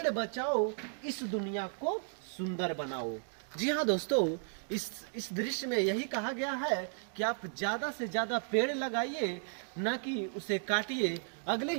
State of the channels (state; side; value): silent; left; 55 dB below the other